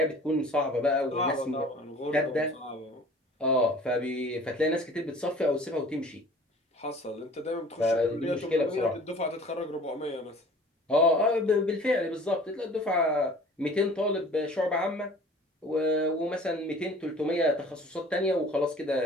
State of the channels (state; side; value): normal; both; correlation 0.47